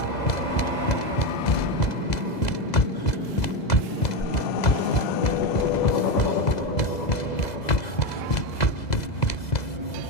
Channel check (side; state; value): right; late; 2.0 ms